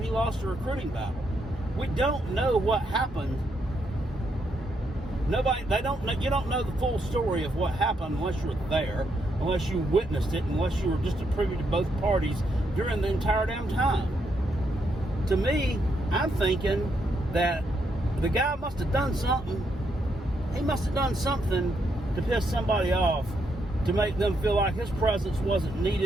he lost a recruiting battle. We don't know what happened. You don't know the full story of what happened unless you were there, unless you witnessed it, unless you were just a privy to both parties during the entire damn time. To me, I'm thinking that the guy must have done something. He must have done something to piss somebody off, to make them feel like his presence wasn't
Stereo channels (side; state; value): both; normal; correlation 0.78